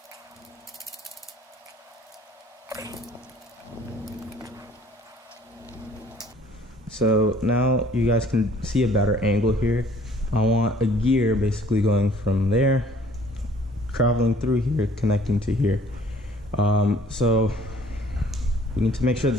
So now you guys can see a better angle here. I want a gear basically going from there, traveling through here, connecting to here. So we need to make sure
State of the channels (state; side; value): normal; both; correlation 0.56